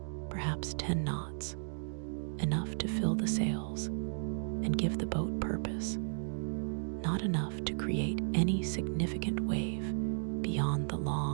perhaps 10 knots, enough to fill the sails and give the boat purpose, not enough to create any significant wave beyond the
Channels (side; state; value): left; silent; digital silence